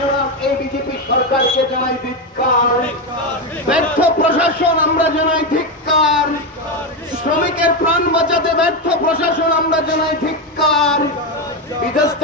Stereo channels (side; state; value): both; normal; correlation 0.10